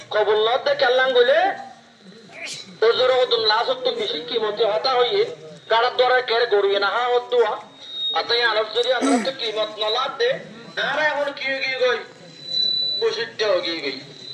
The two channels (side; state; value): both; identical; correlation 1.00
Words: কবুল্লত দে কেল্লাং গলে ওজর হতুন লাস্ট তুন বেশি কিমতে হতা হইয়ে কারার দ্বারা কেড়ে গড়িয়ে না হা হত দোয়া আতাই আরব যদি আমরা তো কিমত নলাদ দে আর এখন কি গিয়ে গই প্রসিদ্ধ গিয়ে গই